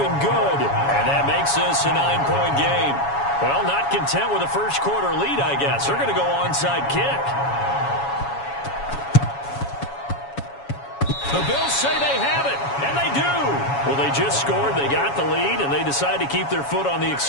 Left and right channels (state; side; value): late; right; 7.2 ms